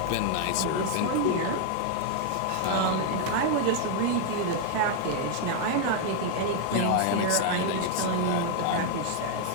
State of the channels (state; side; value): different; both; correlation 0.00